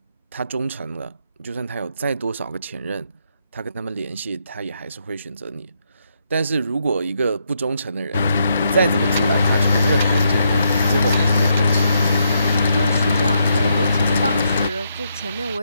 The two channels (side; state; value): both; inverted; correlation -0.78